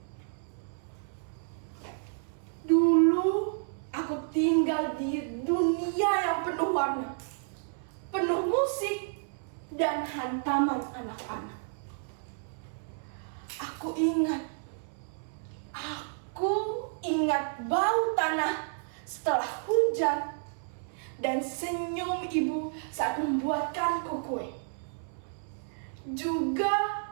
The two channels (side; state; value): left; silent; 57 dB below the other